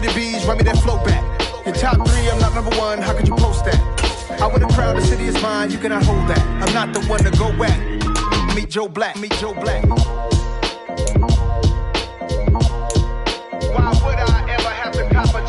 bees, run me that flow back. Your top three, I'm not number one, how could you post that? I would have crowned the city is mine, you cannot hold that. I'm not the one to go back. Meet Joe Black, meet Joe Black. Why would I ever have to cop a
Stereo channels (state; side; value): identical; both; correlation 1.00